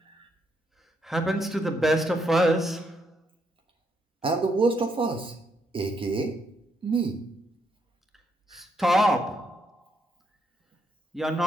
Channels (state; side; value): normal; both; correlation 0.76